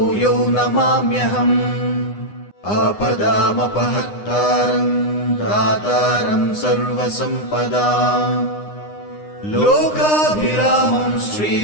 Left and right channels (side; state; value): right; late; 9.8 ms